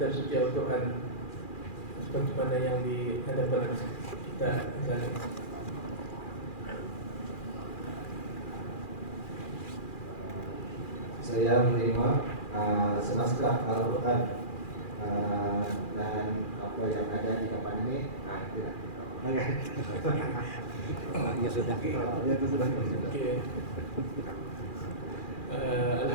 suci Al-Quran seperti mana yang di hadapan kita sekarang. Saya menerima senaskah Al-Quran dan apa yang ada di depan ini. Itulah. Ya sudah. Ya itu sudah. Okey.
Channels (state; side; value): late; right; 2.4 ms